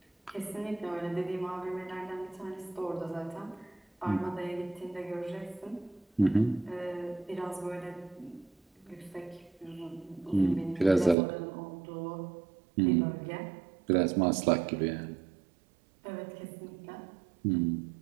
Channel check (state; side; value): drops out; left; at 11.2 s